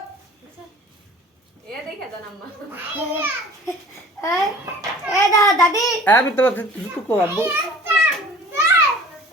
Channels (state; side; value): normal; both; correlation 0.46